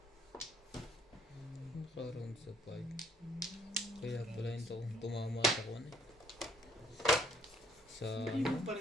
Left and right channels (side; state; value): both; normal; correlation 0.63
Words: Naka-round sa 5. Kaya pala yung tumama sa kuwan eh. Sa Hindi mo pa